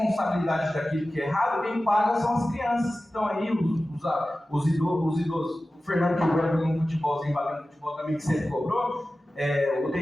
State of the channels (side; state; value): both; normal; correlation 0.95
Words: daquilo que é errado, quem paga são as crianças que estão aí, os idosos. O Fernando que joga no futebolzinho, batendo futebol também, que sempre cobrou. O